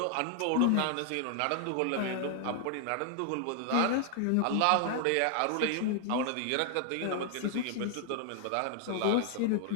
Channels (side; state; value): both; different; correlation 0.00